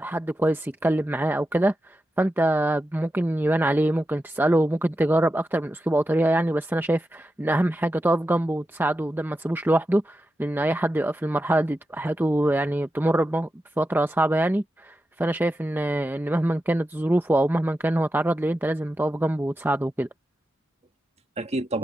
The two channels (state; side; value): normal; both; correlation 0.90